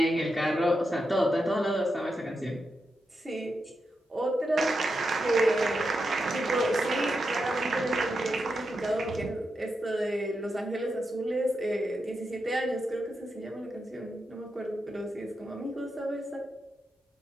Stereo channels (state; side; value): normal; both; correlation 0.86